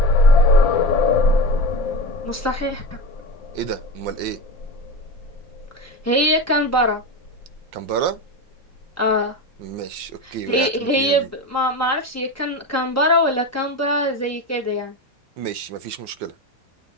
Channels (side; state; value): both; normal; correlation 0.24